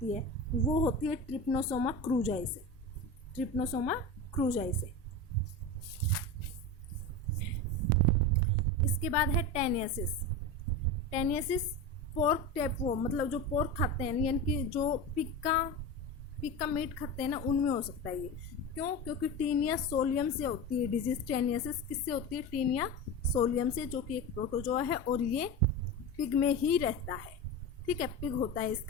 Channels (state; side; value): normal; both; correlation 0.25